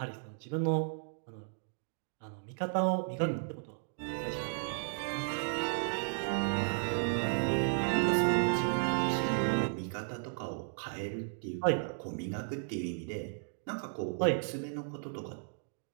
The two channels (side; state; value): left; silent; digital silence